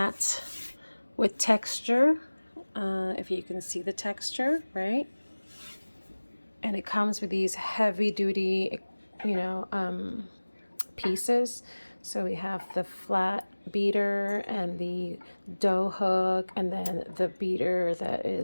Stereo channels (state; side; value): inverted; both; correlation -1.00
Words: with texture. If you can see the texture, right? And it comes with these heavy duty, pieces. So we have the flat beater and the dough hook, and then the beater that